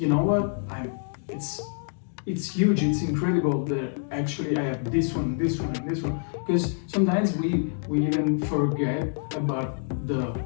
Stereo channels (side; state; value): right; silent; digital silence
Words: know what, it's huge, it's incredible that actually I have this one, this one, and this one. Because sometimes we even forget about the